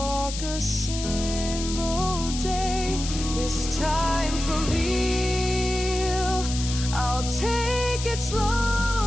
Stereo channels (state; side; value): noise; left; hiss, 8 dB below the sound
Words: a single day. This time for real, I'll take it